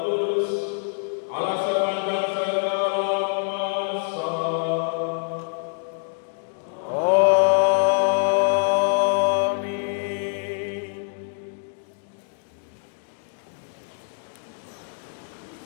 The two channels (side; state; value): right; silent; digital silence